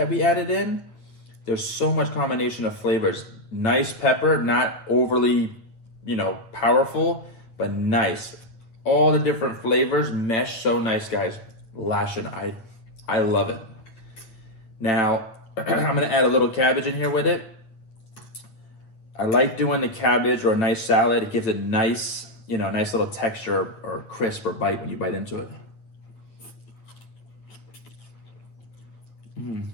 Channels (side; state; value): right; late; 9.3 ms